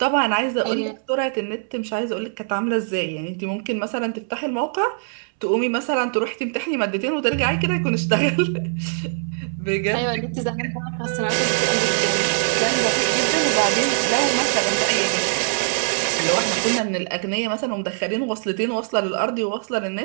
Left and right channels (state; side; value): silent; left; 64 dB below the other